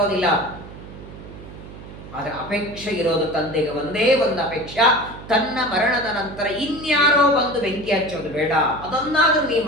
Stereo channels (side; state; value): right; noise; hum, 15 dB below the sound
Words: ಆದ್ರೆ ಅಪೇಕ್ಷೆ ಇರೋದು ತಂದೆಗೆ ಒಂದೇ ಒಂದು ಅಪೇಕ್ಷೆ, ತನ್ನ ಮರಣದ ನಂತರ ಇನ್ಯಾರೋ ಬಂದು ಬೆಂಕಿ ಹಚ್ಚೋದು ಬೇಡ, ಅದನ್ನಾದ್ರೂ ನೀ